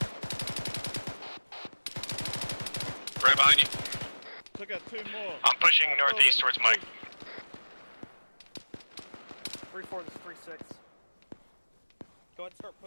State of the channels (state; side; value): inverted; both; correlation -1.00